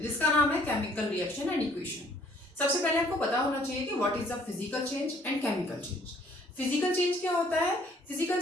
जिसका नाम है केमिकल रिएक्शन एंड इक्वेशन। सबसे पहले आपको पता होना चाहिए कि what is the physical change and chemical change. Physical change क्या होता है? फिजिकल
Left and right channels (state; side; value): normal; both; correlation 0.61